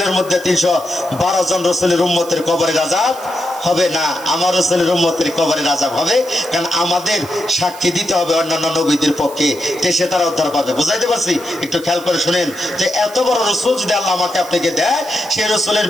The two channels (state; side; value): noise; right; hiss, 18 dB below the sound